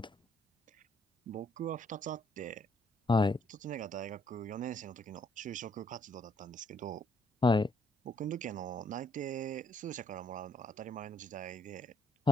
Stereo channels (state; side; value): normal; both; correlation 0.68